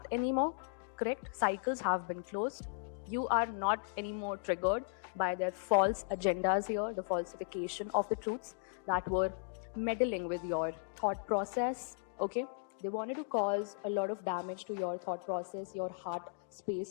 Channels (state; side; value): silent; right; digital silence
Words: anymore, correct? Cycles have been closed. You are not anymore triggered by their false agendas here, the falsification of the truths that were meddling with your thought process. Okay, they wanted to cause a lot of damage to your thought process, your heart